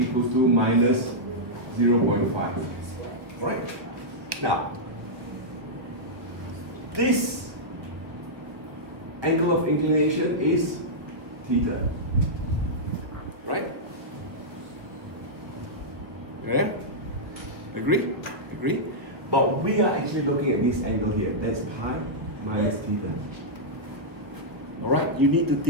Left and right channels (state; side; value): late; left; 1.0 ms